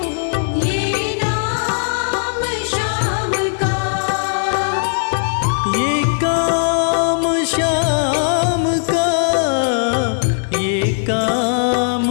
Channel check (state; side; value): silent; right; digital silence